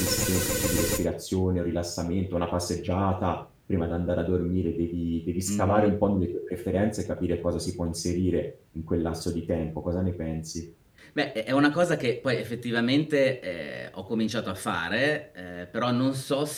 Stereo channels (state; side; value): identical; both; correlation 1.00